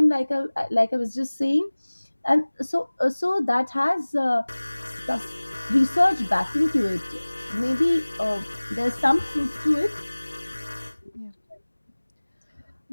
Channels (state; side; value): inverted; both; correlation -1.00